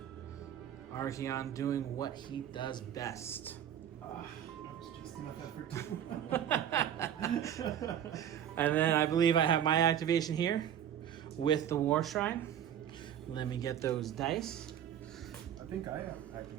Archaeon doing what he does best. That was just enough effort too. And then I believe I have my activation here with the Warshrine. Let me get those dice. I think I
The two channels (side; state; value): left; quieter; 10.0 dB